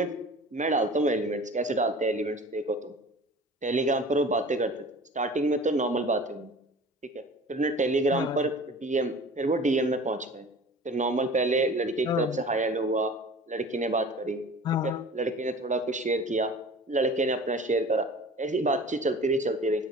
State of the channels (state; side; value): normal; both; correlation 0.42